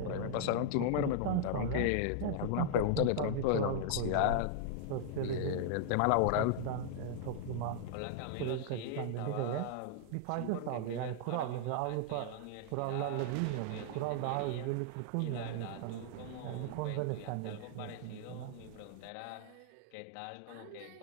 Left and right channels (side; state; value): both; different; correlation -0.01